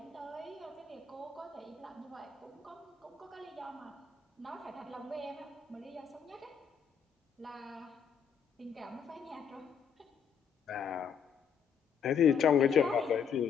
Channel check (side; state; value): right; quieter; 7.0 dB